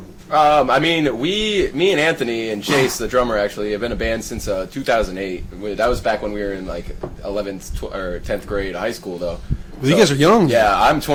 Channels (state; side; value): identical; both; correlation 1.00